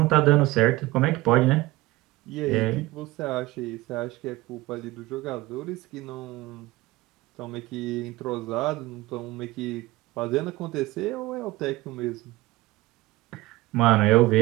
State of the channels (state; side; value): quieter; left; 19.2 dB